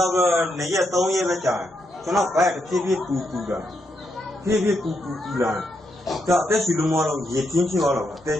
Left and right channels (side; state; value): both; normal; correlation 0.80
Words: ာက်တော့2ရက်3ရက်ပဲကြာတယ်ကျွန်တော်ဘက်တစ်ဖြည်းဖြည်းပူလာဖြည်းဖြည်းပူလာဒါအသက်ရှူလို့မတော့ရေပြင်းဖြစ်သွားတော့အသက်